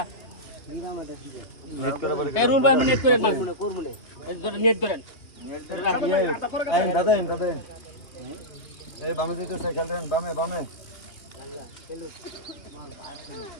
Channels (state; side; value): late; right; 3.1 ms